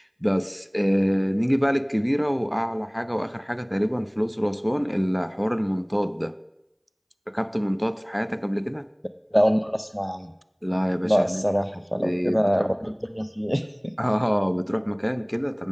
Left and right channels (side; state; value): both; identical; correlation 1.00